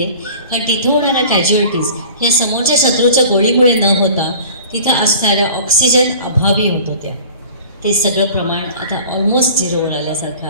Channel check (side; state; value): both; inverted; correlation -0.44